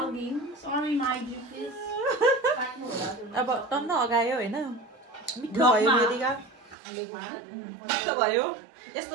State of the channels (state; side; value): drops out; left; at 6.8 s